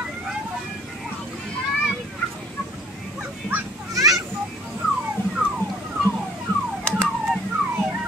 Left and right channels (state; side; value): normal; both; correlation 0.55